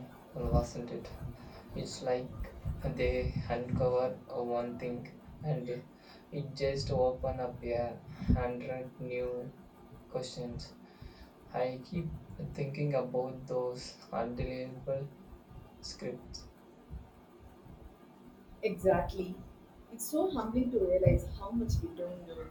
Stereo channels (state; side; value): identical; both; correlation 1.00